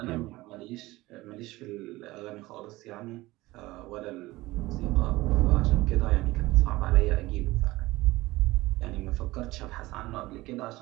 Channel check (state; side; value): quieter; left; 19.3 dB